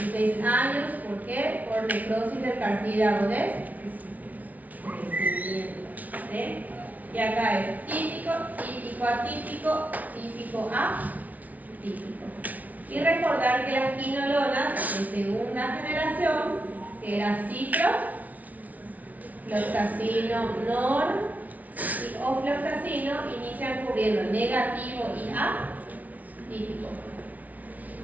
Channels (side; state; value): left; late; 0.074 ms